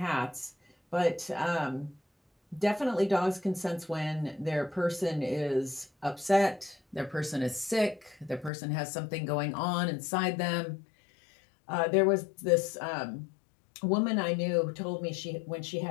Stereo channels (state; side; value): drops out; right; at 8.5 s